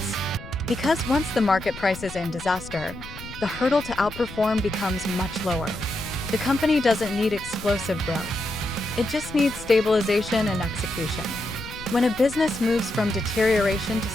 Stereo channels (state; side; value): noise; left; rumble, 14 dB below the sound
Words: Because once the market price is in disaster, the hurdle to outperform becomes much lower. The company doesn't need explosive growth. It just needs stabilization and execution. When a business moves from deterioration to